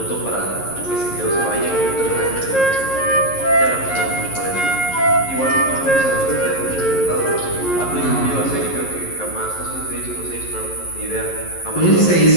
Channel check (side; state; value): right; late; 11 ms